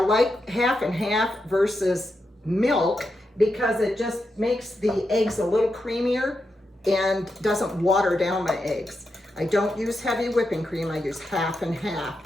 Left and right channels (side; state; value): both; normal; correlation 0.86